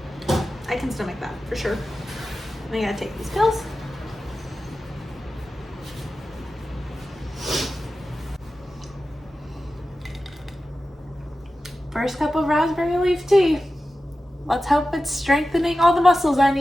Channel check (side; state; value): both; normal; correlation 0.94